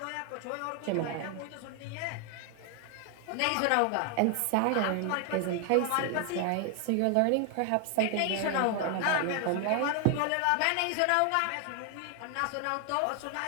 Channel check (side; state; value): both; different; correlation 0.00